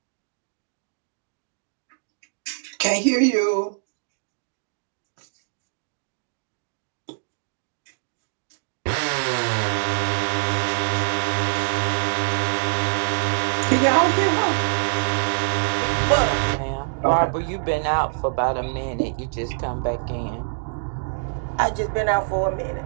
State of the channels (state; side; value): silent; left; digital silence